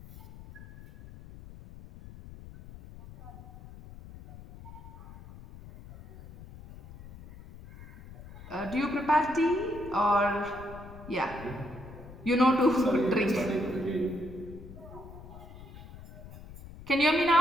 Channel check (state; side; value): noise; left; rumble, 16 dB below the sound